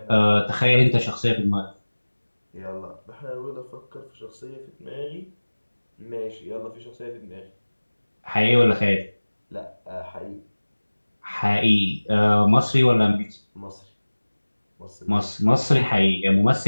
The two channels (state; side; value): inverted; both; correlation -1.00